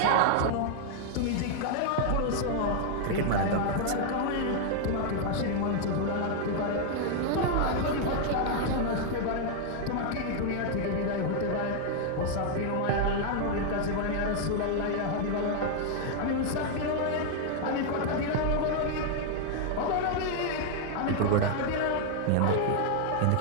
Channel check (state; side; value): different; both; correlation 0.00